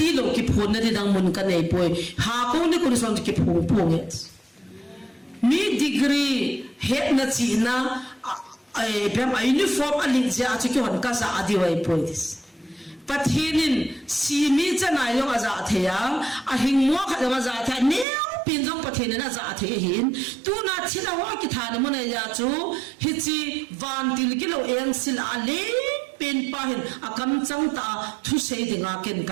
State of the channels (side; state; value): left; drops out; at 18.1 s